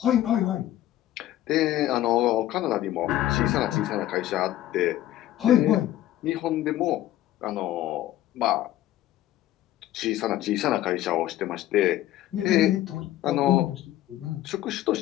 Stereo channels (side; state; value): right; quieter; 13.7 dB